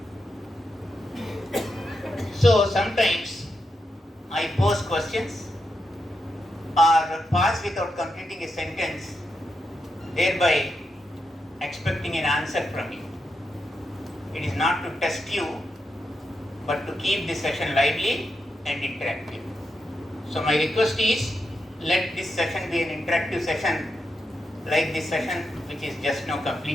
So sometimes I pose questions or pass without completing a sentence, thereby expecting an answer from you. It is not to test you, but to keep the session lively and interactive. So my request is, let this session be an interactive session like this session which is just now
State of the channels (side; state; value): both; normal; correlation 0.86